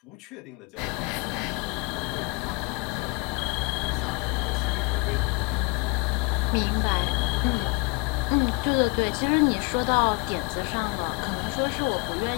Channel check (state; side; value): quieter; right; 29.6 dB